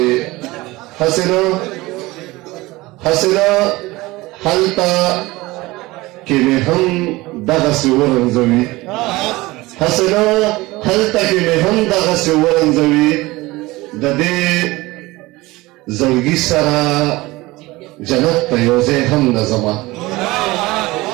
حسنه هلته کې مې هم دغسې ورنځوي حسنه هلته کې مې هم دغسې ورنځوي د دې زړګي سره جنت ته یو ځای هم نه ځمه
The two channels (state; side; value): quieter; left; 20.5 dB